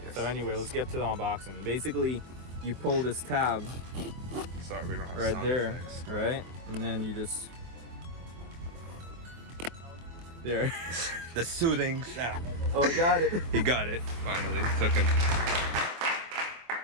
Yes. So anyway, let's get to the unboxing. Basically, you pull this tab Sorry, we don't have right sound there, effects. right? And then you just there. The soothing sound. Oh, I got it. He got it. Finally, took him.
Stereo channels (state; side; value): late; left; 24 ms